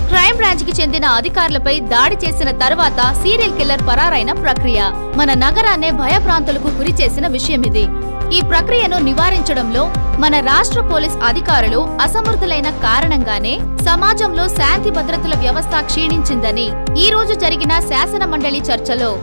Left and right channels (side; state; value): both; inverted; correlation -1.00